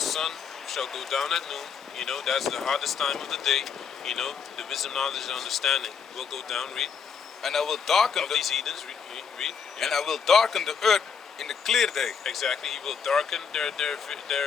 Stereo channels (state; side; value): quieter; right; 6.6 dB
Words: shall go down at noon. You know, that's the hottest time of the day. You know, the wisdom, knowledge, and understanding will go down. Read. And I will darken these heathens. Read. Yeah. And I will darken the earth in the clear day. Exactly. He will darken their